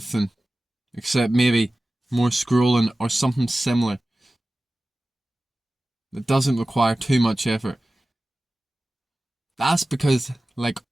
except maybe more scrolling or something similar that doesn't require too much effort? That's because, like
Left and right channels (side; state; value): both; normal; correlation 0.96